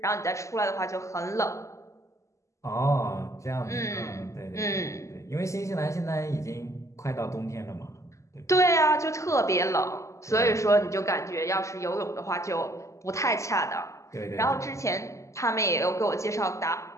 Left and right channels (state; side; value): late; right; 0.15 ms